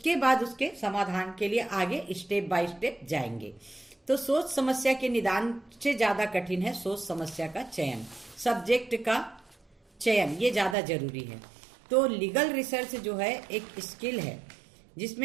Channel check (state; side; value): drops out; left; at 10.8 s